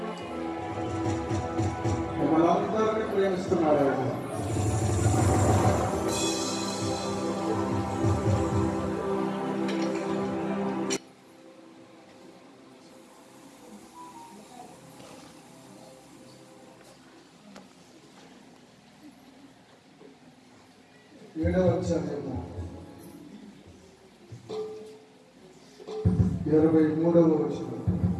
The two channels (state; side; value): identical; both; correlation 1.00